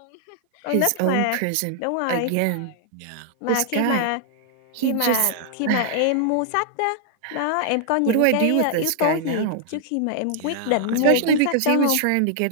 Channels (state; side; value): different; both; correlation -0.01